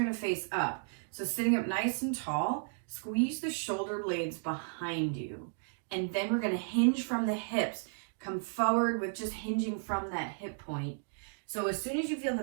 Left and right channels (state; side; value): silent; left; digital silence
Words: to face up. So sitting up nice and tall, squeeze the shoulder blades behind you. And then we're going to hinge from the hips. Come forward with just hinging from that hip point. So as soon as you feel